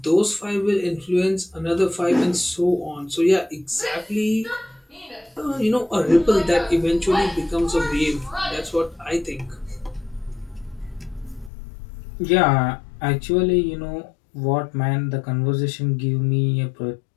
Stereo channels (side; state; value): right; drops out; at 11.5 s